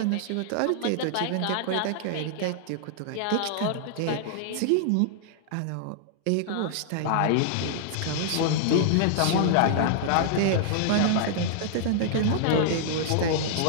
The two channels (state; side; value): different; both; correlation -0.01